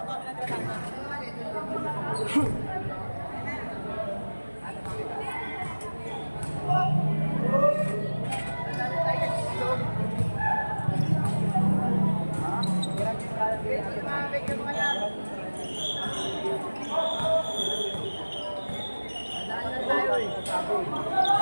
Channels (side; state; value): both; inverted; correlation -1.00